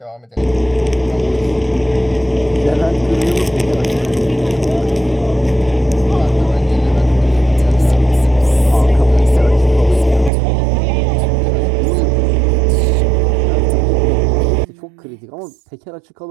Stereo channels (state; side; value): drops out; left; at 10.3 s